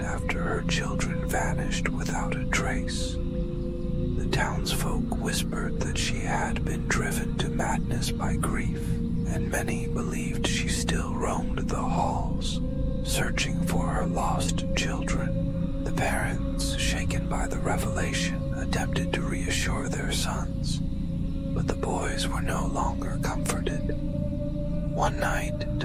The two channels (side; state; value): both; identical; correlation 1.00